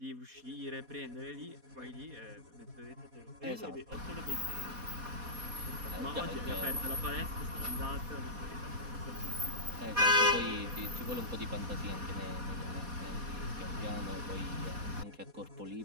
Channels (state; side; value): late; left; 4.2 ms